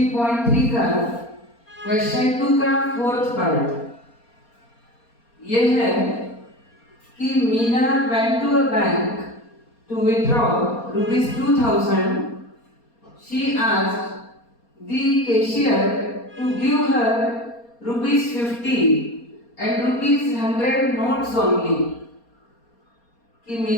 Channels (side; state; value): right; late; 4.3 ms